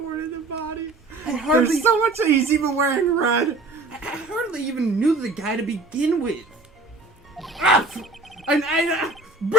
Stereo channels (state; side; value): quieter; left; 3.5 dB